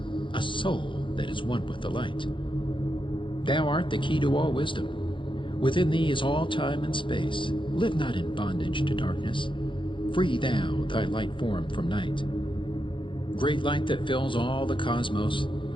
a soul that is one with the light. Thou art the key to all wisdom. Within thee is all time and space. Live not in bondage to darkness. Free thou thy light form from night. Great light that fills all the cosmos,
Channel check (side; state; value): right; late; 0.24 ms